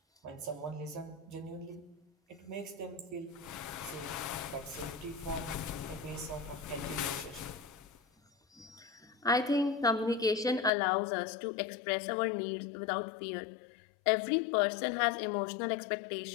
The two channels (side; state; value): right; drops out; at 10.7 s